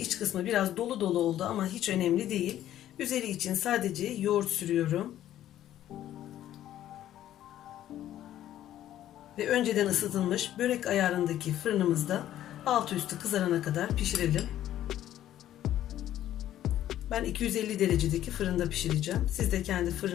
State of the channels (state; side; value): quieter; right; 12.3 dB